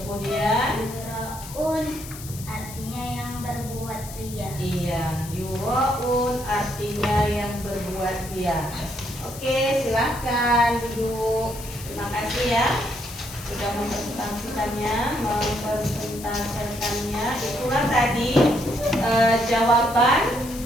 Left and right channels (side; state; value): left; noise; hiss, 14 dB below the sound